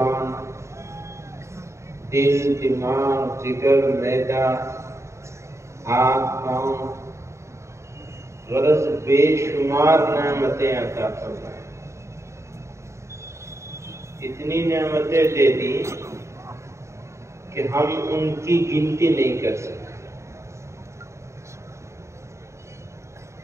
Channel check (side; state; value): left; late; 0.14 ms